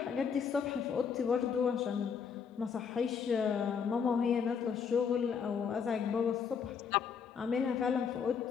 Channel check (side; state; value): right; quieter; 6.6 dB